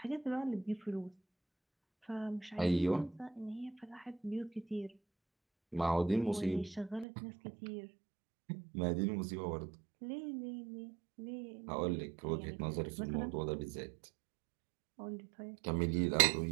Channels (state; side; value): drops out; left; at 7.1 s